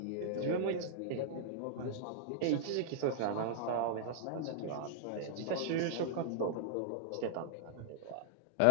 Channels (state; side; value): different; both; correlation -0.01